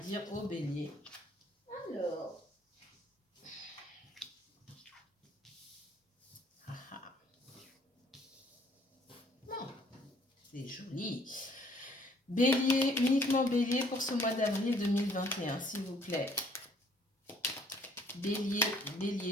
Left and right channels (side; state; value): both; normal; correlation 0.61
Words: au bélier? Alors... C'est joli. Bélier, uniquement bélier pour ce mois d'avril 2021, s'il vous plaît. Bélier, bélier,